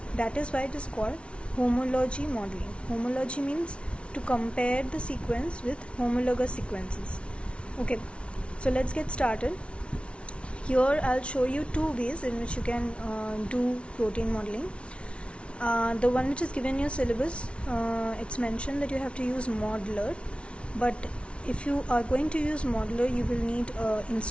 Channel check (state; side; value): late; right; 0.060 ms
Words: That is why it is called homology modeling. Homology means to compare the sequence with homologous sequences. Okay, so let's get started. Here I'll show you two ways in which you can do protein modeling. The one which is given in your syllabus, it's mentioned that you have to use modeler, but if you are going to use modeler, you will need